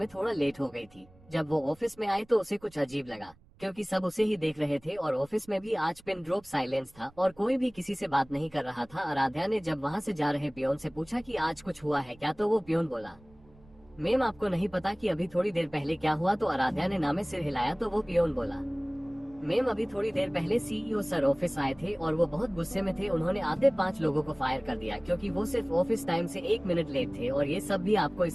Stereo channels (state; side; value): noise; right; rumble, 27 dB below the sound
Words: थोड़ा लेट हो गई थी। जब वो ऑफिस में आई तो उसे कुछ अजीब लगा, क्योंकि सब उसे ही देख रहे थे और ऑफिस में भी आज पिन ड्रॉप साइलेंस था और कोई भी किसी से बात नहीं कर रहा था। आराध्या ने जब वहाँ से जा रहे पियोन से पूछा कि आज कुछ हुआ है क्या, तो वो पियोन बोला, मैम आपको नहीं पता कि अभी थोड़ी देर पहले क्या हुआ? तो आराध्या ने नामे सिर हिलाया तो वो पियोन बोला, मैम अभी थोड़ी देर पहले सीईओ सर ऑफिस आए थे और वो बहुत गुस्से में थे। उन्होंने आधे 5 लोगों को फायर कर दिया क्योंकि वो सिर्फ ऑफिस टाइम से 1 मिनट लेट थे, और ये सब भी आपको